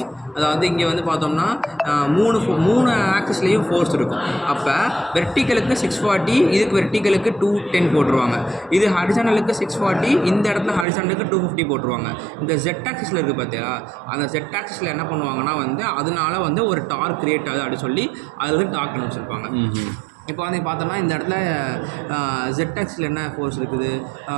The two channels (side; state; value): left; drops out; at 10.9 s